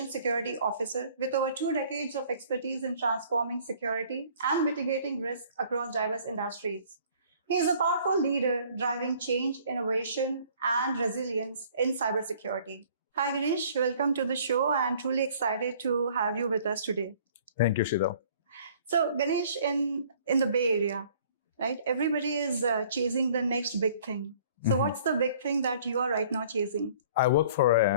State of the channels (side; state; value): both; inverted; correlation -0.55